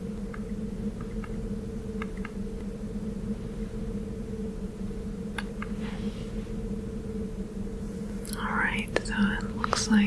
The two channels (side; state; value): both; identical; correlation 1.00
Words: Alright, so it looks